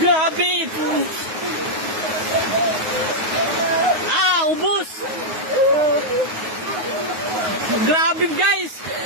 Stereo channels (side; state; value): left; late; 9.5 ms